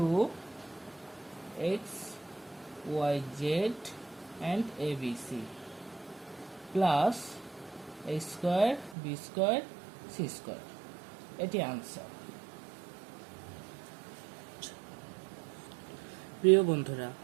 y z and abc plus a square b square c square. এটি আনসার। প্রিয় বন্ধুরা,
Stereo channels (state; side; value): drops out; left; at 9.0 s